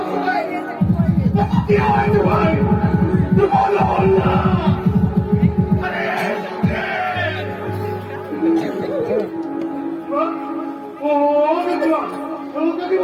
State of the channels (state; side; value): identical; both; correlation 1.00